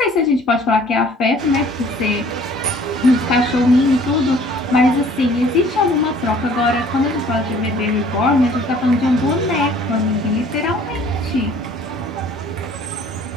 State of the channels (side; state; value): both; normal; correlation 0.54